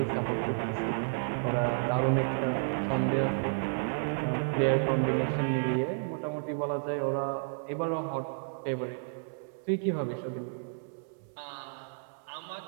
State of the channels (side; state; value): left; silent; 57 dB below the other